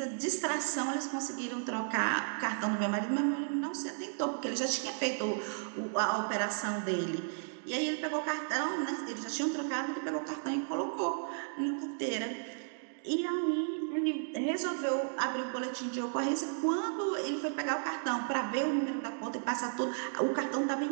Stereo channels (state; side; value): silent; left; digital silence